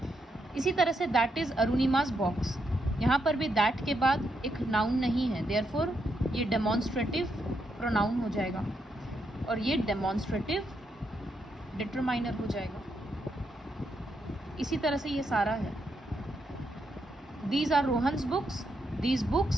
इसी तरह से दैट इज़ अरुणिमास बॉक्स. यहाँ पर भी दैट के बाद एक नाउन नहीं है, देयरफॉर ये डेमॉन्स्ट्रेटिव प्रोनाउन हो जाएगा और ये डेमॉन्स्ट्रेटिव डिटरमाइनर हो जाएगा. इसी तरह से ये सारा है. These are Rohan's books, these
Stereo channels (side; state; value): both; normal; correlation 0.80